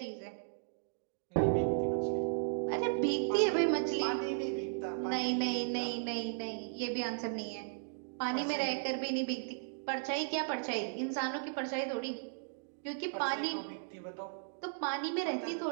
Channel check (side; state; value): left; silent; digital silence